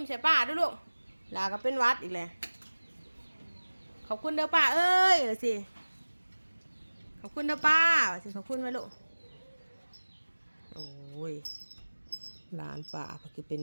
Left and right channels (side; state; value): both; inverted; correlation -1.00